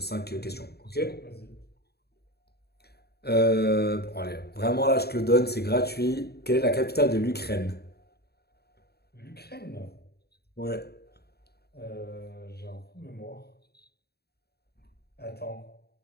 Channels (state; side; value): late; right; 0.47 ms